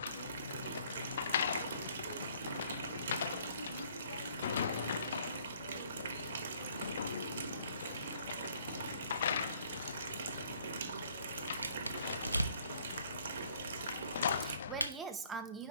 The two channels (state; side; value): inverted; both; correlation -0.61